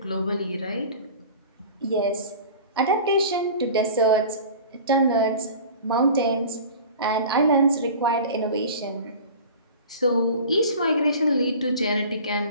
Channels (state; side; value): inverted; both; correlation -0.39